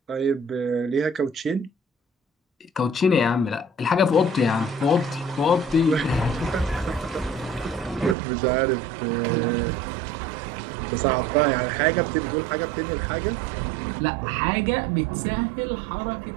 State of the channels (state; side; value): drops out; left; at 8.2 s